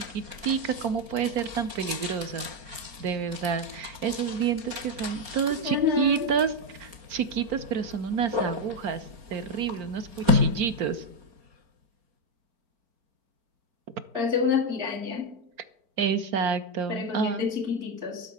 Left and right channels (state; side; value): late; left; 4.4 ms